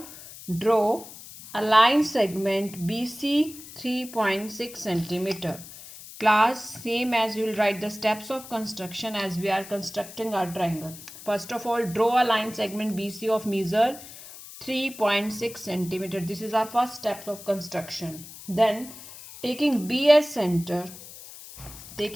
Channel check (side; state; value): left; noise; hiss, 15 dB below the sound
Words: draw a line segment BC 3.6 centimeter. Class, same as you will write the steps of construction as we are constructing our triangle. First of all, draw a line segment BC of measure 3.6 centimeter. This is our first step of construction. Then taking B as center